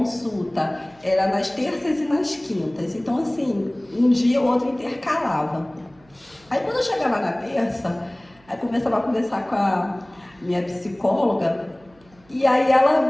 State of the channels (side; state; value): right; noise; hum, 30 dB below the sound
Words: era nas terças e nas quintas, então assim, um dia ou outro intercalava. Aí quando eu chegava na terça, aí começava a conversar com a minha psicóloga, e aí